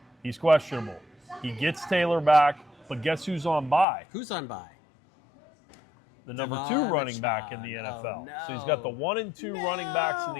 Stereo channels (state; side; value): drops out; right; at 3.9 s